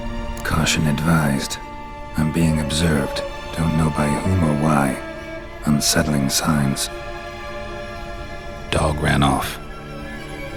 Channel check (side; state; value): both; identical; correlation 1.00